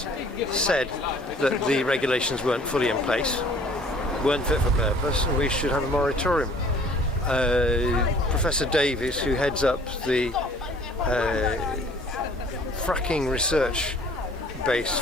said that the regulations weren't fully in place, weren't fit for purpose, and we should have a moratorium. Professor Davies, who heads up the fracking research base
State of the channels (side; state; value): both; normal; correlation 0.53